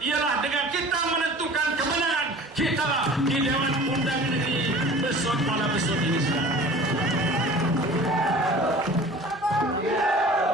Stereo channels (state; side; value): normal; both; correlation 0.43